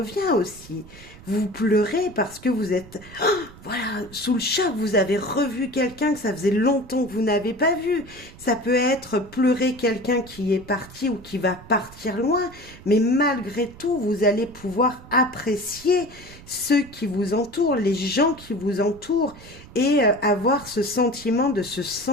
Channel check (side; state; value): right; noise; rumble, 19 dB below the sound